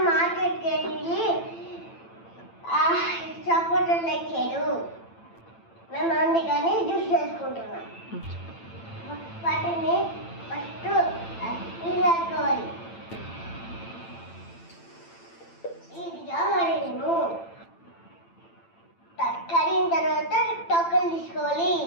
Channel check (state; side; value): late; right; 8.9 ms